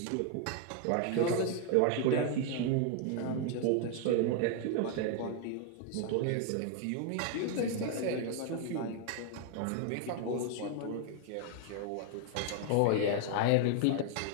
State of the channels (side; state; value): both; different; correlation 0.00